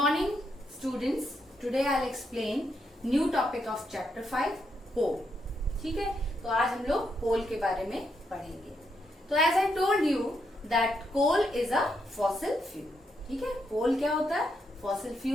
students. Today I'll explain new topic of chapter 5, coal. ठीक है, तो आज हम लोग coal के बारे में पढ़ेंगे. तो as I told you that coal is a fossil fuel. ठीक है, coal क्या होता है? Fossil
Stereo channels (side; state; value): both; normal; correlation 0.79